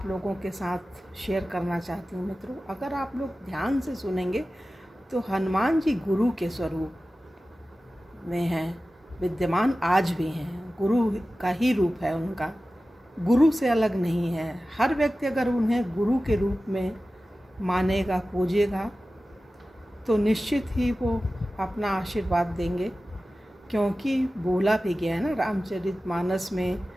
लोगों के साथ शेयर करना चाहती हूँ मित्रों। अगर आप लोग ध्यान से सुनेंगे तो हनुमान जी गुरु के स्वरूप में हैं, विद्यमान आज भी हैं। गुरु का ही रूप है उनका, गुरु से अलग नहीं है। हर व्यक्ति अगर उन्हें गुरु के रूप में मानेगा, पूजेगा, तो निश्चित ही वो अपना आशीर्वाद देंगे। क्योंकि बोला भी गया है ना रामचरितमानस में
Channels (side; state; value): both; normal; correlation 0.95